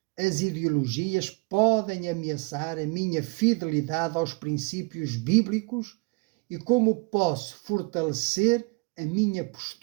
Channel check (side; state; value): left; quieter; 29.8 dB